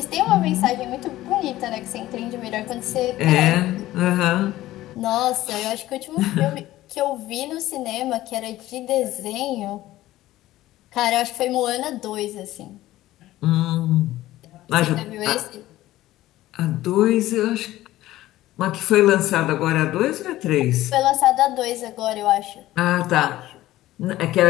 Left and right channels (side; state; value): right; quieter; 15.6 dB